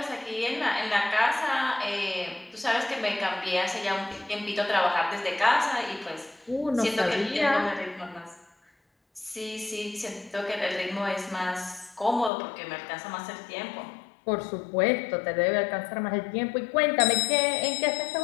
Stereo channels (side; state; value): right; drops out; at 12.3 s